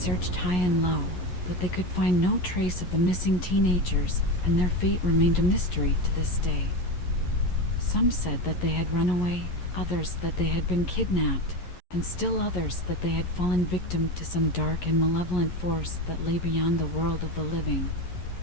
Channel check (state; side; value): late; right; 11 ms